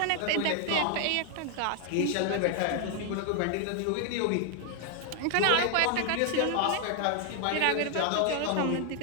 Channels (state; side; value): different; both; correlation 0.00